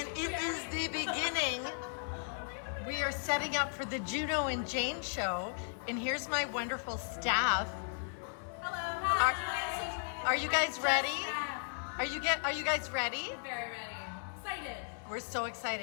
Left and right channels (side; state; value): right; silent; 54 dB below the other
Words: it is the beginning. We are setting up for the Juno and Jayne Show, and here's my wonderful staff. Hello. Are you guys ready? Are you guys ready? Very ready. Excited. We're so